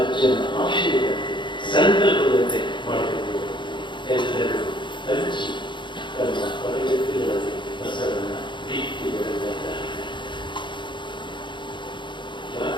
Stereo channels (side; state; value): right; late; 0.23 ms